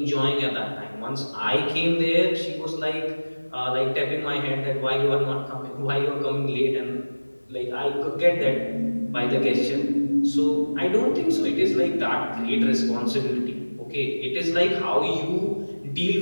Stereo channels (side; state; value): both; inverted; correlation -1.00